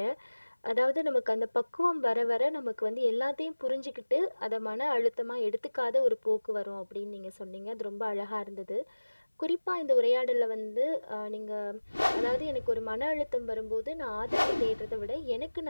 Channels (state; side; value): inverted; both; correlation -1.00